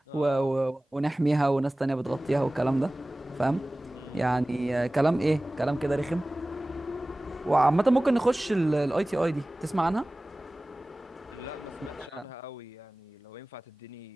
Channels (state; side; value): normal; both; correlation 0.98